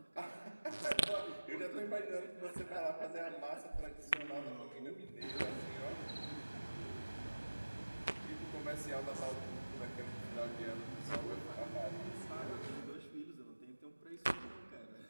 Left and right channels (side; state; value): both; inverted; correlation -1.00